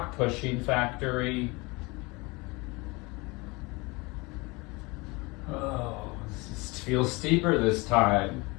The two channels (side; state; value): right; quieter; 25.5 dB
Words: pushing factory. Oh, this feels steeper this time.